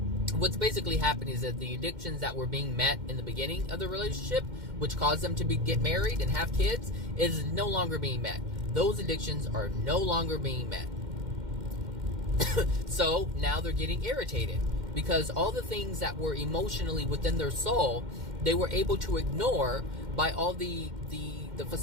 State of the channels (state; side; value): late; left; 2.1 ms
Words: what's basically happening is that the addictions that were being met in the beginning of the relationship, which caused them to get married and have kids, is no longer being met. Those addictions are no longer being met. So now they're getting irritated because all the things that were emotionally within their soul, they were able to ignore by all the